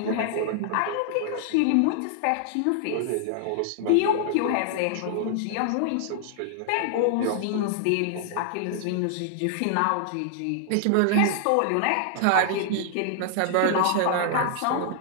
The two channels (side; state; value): both; different; correlation -0.01